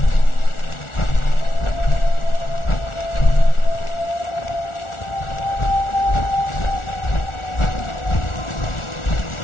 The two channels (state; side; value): late; right; 1.4 ms